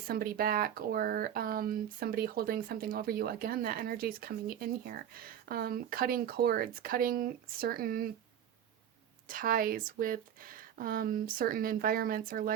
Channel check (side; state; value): left; quieter; 9.8 dB